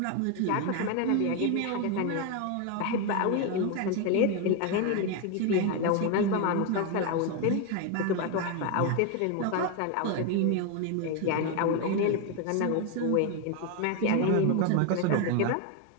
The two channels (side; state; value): both; different; correlation 0.01